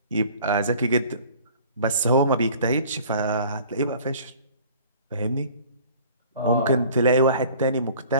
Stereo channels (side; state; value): both; inverted; correlation -0.49